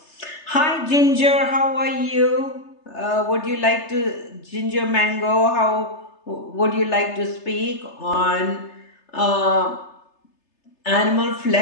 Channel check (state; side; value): late; right; 3.3 ms